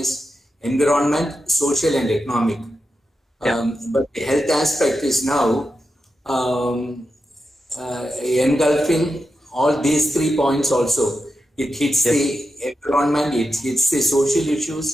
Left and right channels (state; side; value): normal; both; correlation 0.89